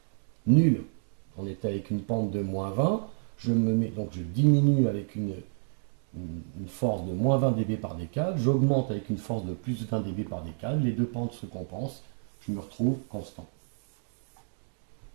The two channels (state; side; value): silent; left; 58 dB below the other